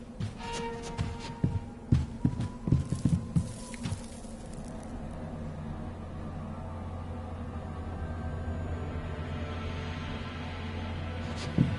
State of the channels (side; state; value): both; identical; correlation 1.00